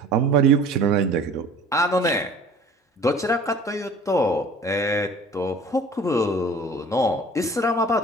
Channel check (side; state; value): both; normal; correlation 0.46